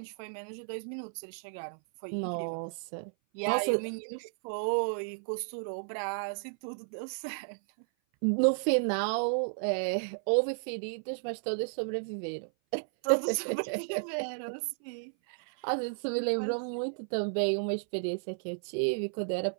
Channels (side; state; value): left; silent; 56 dB below the other